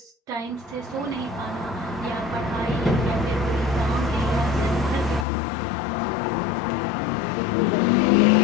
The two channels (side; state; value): right; drops out; at 5.2 s